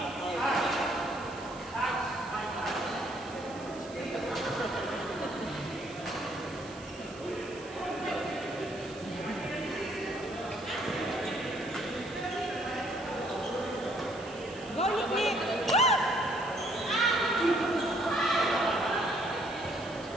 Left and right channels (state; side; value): noise; right; hiss, 19 dB below the sound